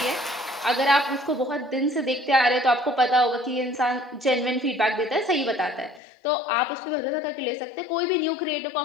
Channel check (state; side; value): drops out; right; at 6.0 s